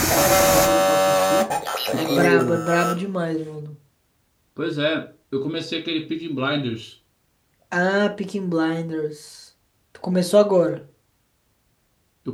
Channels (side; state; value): both; identical; correlation 1.00